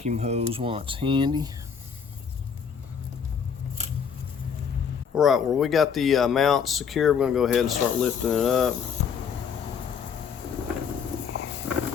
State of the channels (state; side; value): quieter; right; 6.9 dB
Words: hose while it's handy. Alright, well, we got the mount secure. We're going to go ahead and start lifting it up.